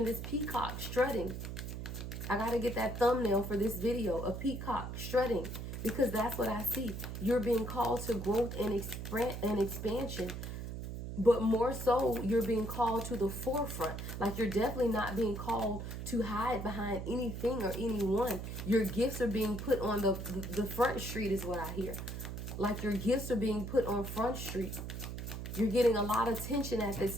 this peacock strutting. I got to get that thumbnail for this video, a peacock strutting, because that's what I see. You're being called to growth and expansion. But more so, you're being called to the forefront. Like, you're definitely not being called to hide behind anything or anyone. Your gifts are being put on the front street is what I hear. Like, your gifts are being put on front street. You're getting a lot of attention at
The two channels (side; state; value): right; noise; hum, 6 dB below the sound